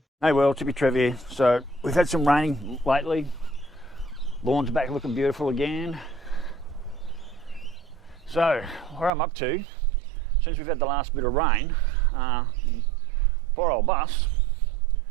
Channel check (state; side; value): drops out; left; at 9.1 s